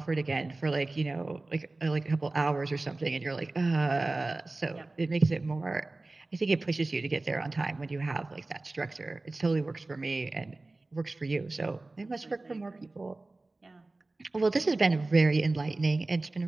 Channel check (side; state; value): left; quieter; 3.1 dB